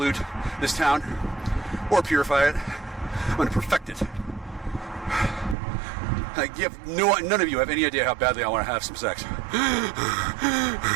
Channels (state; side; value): drops out; left; at 5.6 s